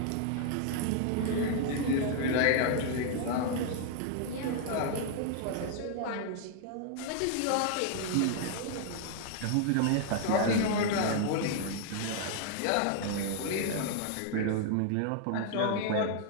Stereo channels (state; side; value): different; both; correlation 0.00